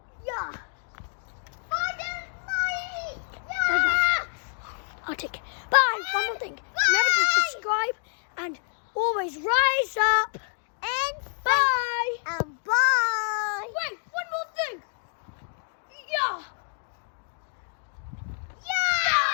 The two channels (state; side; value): silent; right; digital silence